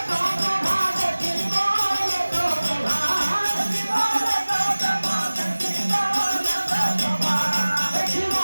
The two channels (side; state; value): both; inverted; correlation -1.00